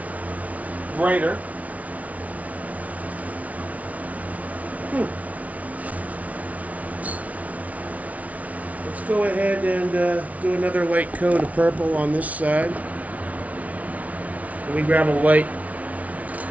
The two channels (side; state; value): left; late; 0.069 ms